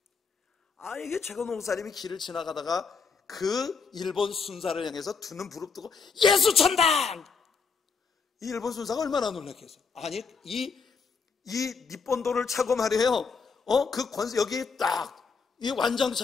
이게 최권능 목사님이 길을 지나가다가 그 일본 순사를 향해서 두 눈 부릅뜨고 예수천당! 이 일본 순사가 얼마나 놀랐겠어. 아니 이 니폰도를 차고 말이에요. 그 권세 여기 딱 이 완장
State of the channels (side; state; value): right; quieter; 5.2 dB